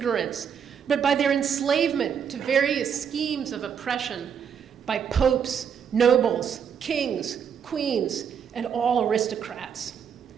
but by their enslavement to various schemes of oppression by popes, nobles, kings, queens, and all aristocrats.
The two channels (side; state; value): left; quieter; 7.6 dB